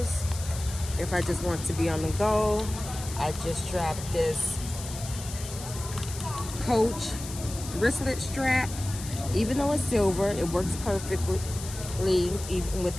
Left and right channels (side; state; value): left; noise; hiss, 11 dB below the sound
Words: If I just want to be on the go, I just strap this Coach wristlet strap. Even though it's silver, it works perfectly even with